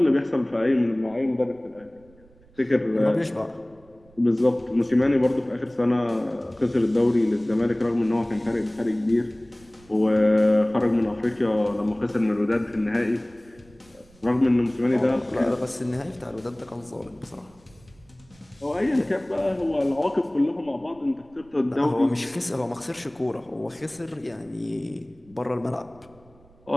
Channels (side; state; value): right; noise; rumble, 28 dB below the sound